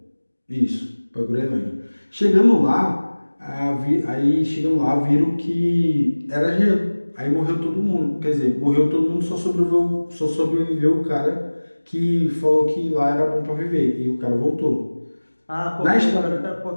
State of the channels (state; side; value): inverted; both; correlation -1.00